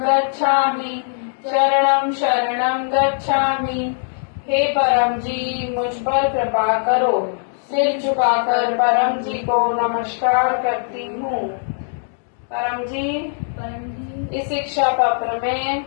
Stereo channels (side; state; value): right; silent; digital silence